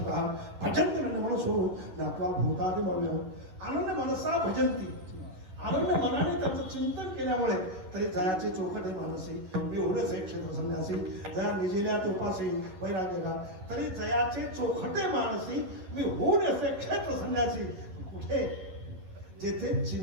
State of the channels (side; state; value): left; late; 11 ms